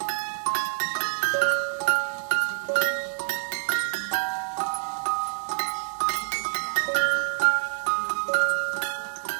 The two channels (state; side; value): silent; left; 60 dB below the other